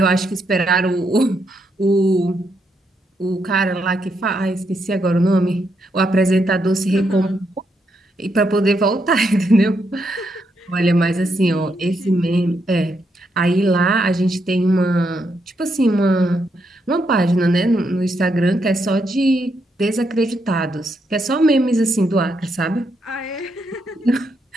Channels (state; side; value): normal; both; correlation 0.79